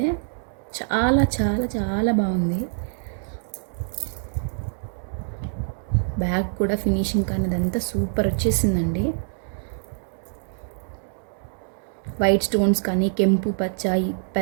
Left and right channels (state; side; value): silent; left; digital silence